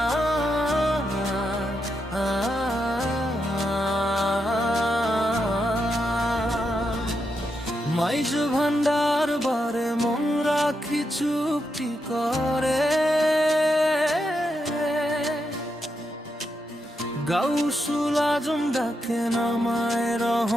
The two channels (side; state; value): both; normal; correlation 0.84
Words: ভান্ডার বারে মন রাখি চুপটি করে গাউসুল আজম ডাকে নামায়